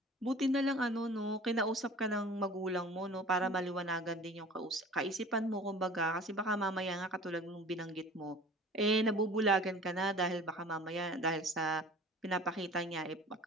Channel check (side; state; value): both; normal; correlation 0.44